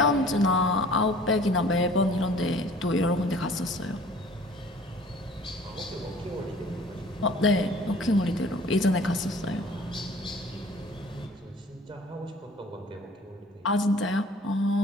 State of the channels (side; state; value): both; normal; correlation 0.50